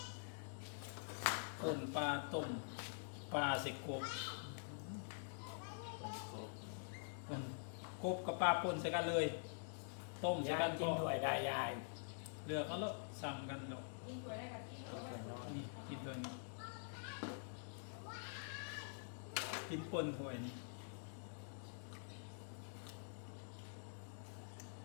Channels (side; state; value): right; silent; digital silence